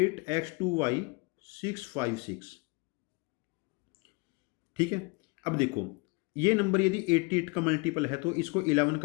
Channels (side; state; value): right; quieter; 28.6 dB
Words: 656। ठीक है, अब देखो ये नंबर यदि 88 का मल्टीपल है तो इसको 11